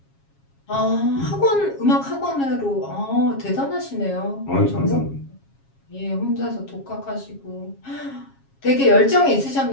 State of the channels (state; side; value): late; right; 7.3 ms